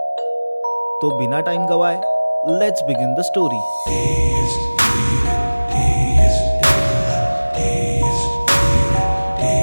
तो बिना टाइम गवाए लेट्स बिगिन द स्टोरी।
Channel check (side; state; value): both; inverted; correlation -1.00